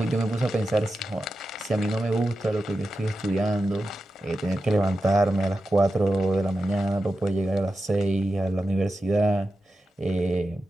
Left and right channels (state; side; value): normal; both; correlation 0.91